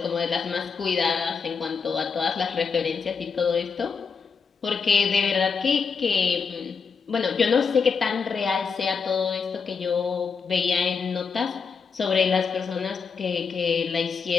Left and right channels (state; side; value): quieter; right; 5.6 dB